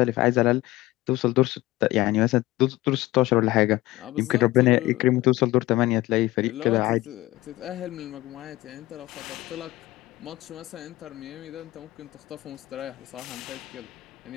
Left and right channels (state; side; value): quieter; right; 18.2 dB